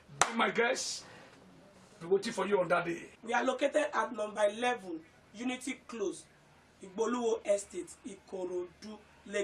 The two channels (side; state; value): both; identical; correlation 1.00